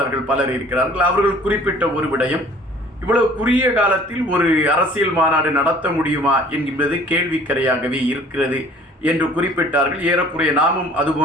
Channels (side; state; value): both; normal; correlation 0.52